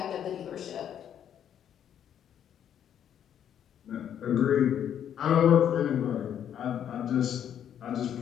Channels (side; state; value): right; quieter; 9.5 dB